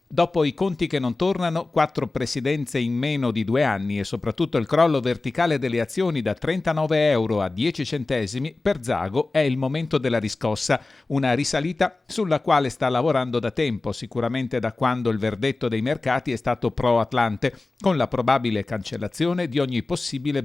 Dopo i conti che non tornano, 4 presidenze in meno di 2 anni e soprattutto il crollo verticale delle azioni da 39 euro a 10 centesimi, per Zago è il momento della riscossa, una risalita sulla quale sta lavorando da tempo, sicuramente da quando il verdetto dei mercati è stato pro-Atlante, con la probabile cancellazione di ogni possibile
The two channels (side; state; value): right; quieter; 3.3 dB